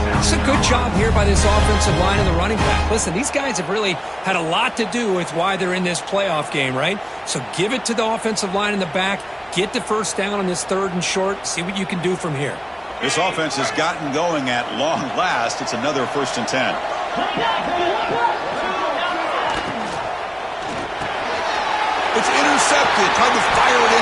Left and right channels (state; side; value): identical; both; correlation 1.00